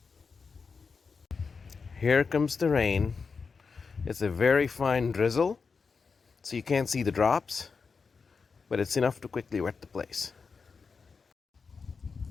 Here comes the rain. It's a very fine drizzle, so you can't see the drops, but it's enough to quickly wet the place.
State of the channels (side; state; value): right; quieter; 5.1 dB